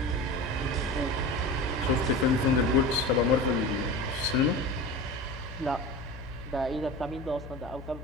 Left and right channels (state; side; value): noise; left; hum, 13 dB below the sound